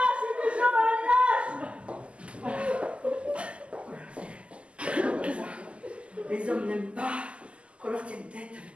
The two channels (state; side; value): late; left; 0.056 ms